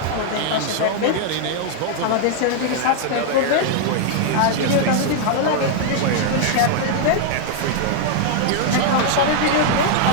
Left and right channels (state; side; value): different; both; correlation 0.00